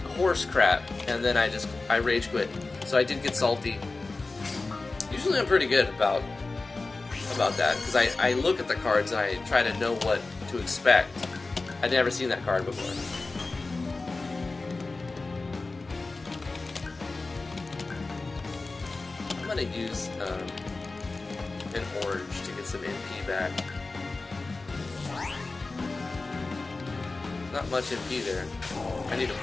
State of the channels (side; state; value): right; quieter; 3.5 dB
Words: horse crap. And then I rage quit. So I did get salty. Usually I'm pretty good about that, because I look at the cards and I try to know what to expect. I'd never seen that card before. I'm gonna use an orange to get some MP back. Not much MP there. I need to